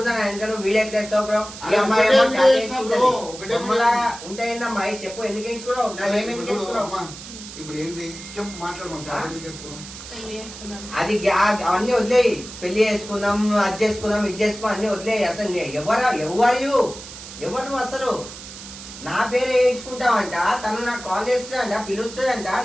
నా వెనక నువ్వు వీడియో చేస్తావు బ్రో. ఈ అమ్మాయి ఉంటాయిందమ్మా చెప్పు. ఎందుకు వేయించుకోవడం? నాకేమేమి వేయించుకోవడం? ఇప్పుడు ఏంది చెప్పు మాట్లాడమంటా. అది అవన్నీ వదిలేయి. పెళ్లి చేసుకుందాం, అది చేసుకుందాం, ఇది చేసుకుందాం అన్ని వదిలేయి. అసలు ఎవరు నువ్వు? అసలు నా పేరు వేయించుకుంటావంట. తను నాకు కాల్ చేస్తుందంట, పిలుస్తుందంట.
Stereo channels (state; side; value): noise; right; hiss, 13 dB below the sound